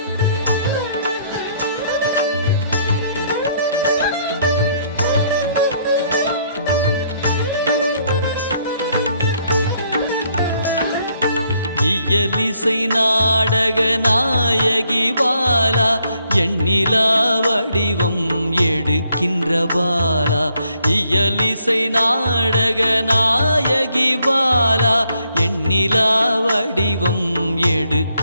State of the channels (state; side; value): inverted; both; correlation -0.70